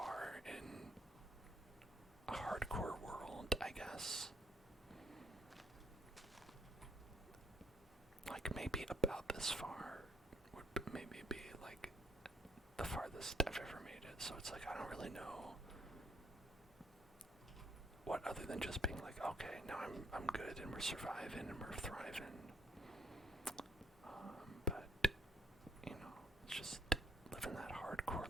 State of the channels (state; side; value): normal; both; correlation 0.68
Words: in a hardcore world, I guess. Like maybe about this far would maybe be like the farthest I've ever made it. So it's like I don't really know what other than just being like, okay, now I'm good and we're surviving and we're thriving. But you know, it's just living that